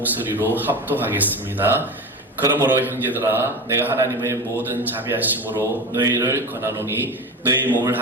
합독하겠습니다. 그러므로 형제들아, 내가 하나님의 모든 자비하심으로 너희를 권하노니 너희 몸을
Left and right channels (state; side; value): normal; both; correlation 0.27